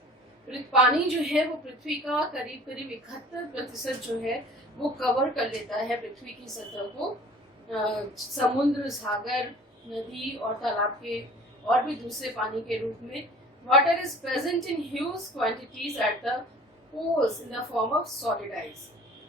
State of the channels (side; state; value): both; normal; correlation 0.46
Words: पानी जो है वो पृथ्वी का करीब 71% जो है वो कवर कर लेता है पृथ्वी की सतह को। समुद्र, सागर, नदी और तालाब के और भी दूसरे पानी के रूप में। Water is present in huge quantities at the poles in the form of solid ice